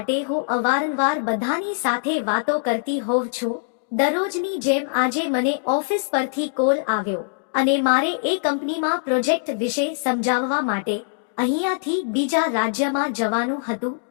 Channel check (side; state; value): right; silent; digital silence